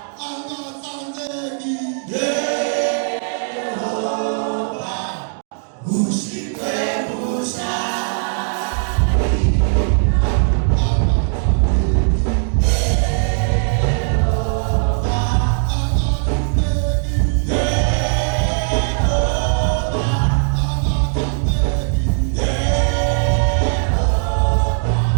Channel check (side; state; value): left; silent; 67 dB below the other